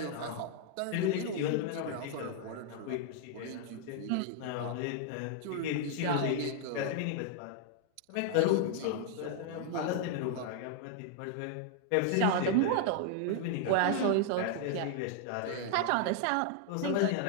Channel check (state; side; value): different; both; correlation 0.00